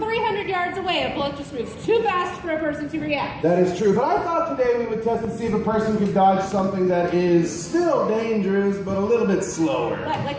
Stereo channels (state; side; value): identical; both; correlation 1.00